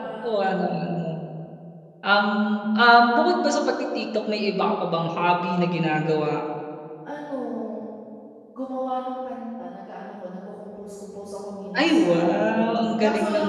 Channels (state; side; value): identical; both; correlation 1.00